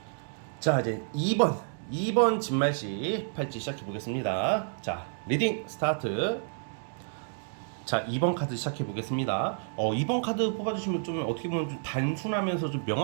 자, 이제 2번 진말씨 팔찌 시작해 보겠습니다. 자, 리딩 스타트. 자, 2번 카드 시작해 보겠습니다. 2번 카드 뽑아주시면 좀 어떻게 보면 좀 단순하면서 좀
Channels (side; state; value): left; silent; digital silence